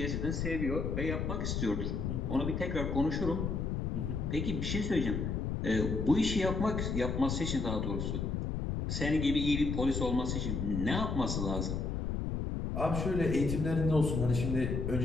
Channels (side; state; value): left; noise; rumble, 1 dB below the sound